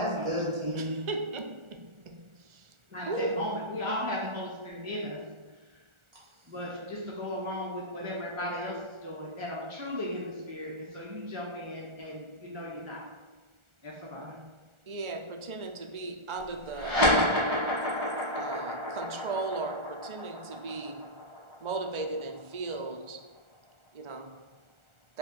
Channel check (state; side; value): late; left; 1.4 ms